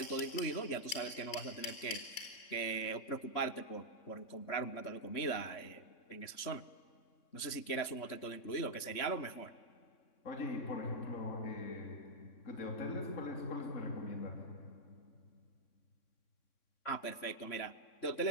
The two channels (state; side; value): late; right; 3.6 ms